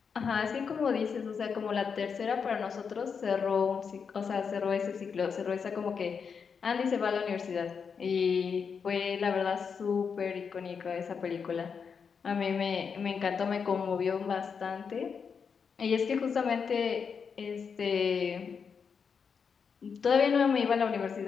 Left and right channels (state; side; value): quieter; right; 6.1 dB